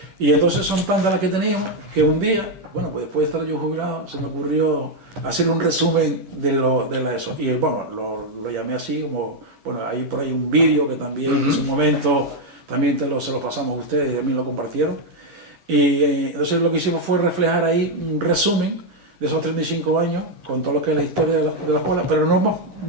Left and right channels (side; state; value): left; late; 10 ms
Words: Y entonces son tantas las que teníamos que un día, pues después de estar yo jubilado, se me ocurrió hacer un resumen de eso. Y bueno, lo llamé así como, hay por ahí un vídeo que también en su momento también se lo pasamos a ustedes y también lo compartieron. Y entonces lo que hicimos fue reflejar ahí un resumen de esos 35 años con todo lo que es la historia de la escuela, pero